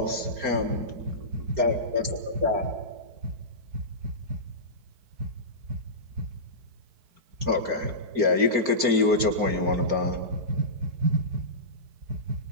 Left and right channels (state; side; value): late; left; 4.4 ms